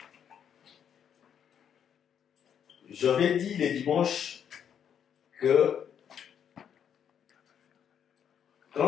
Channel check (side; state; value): right; quieter; 8.5 dB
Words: J'avais dit le dimanche que